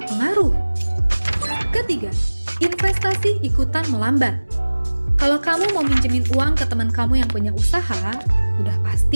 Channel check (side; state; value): both; inverted; correlation -1.00